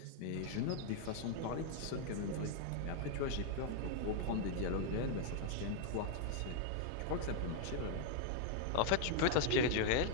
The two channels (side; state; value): both; different; correlation -0.01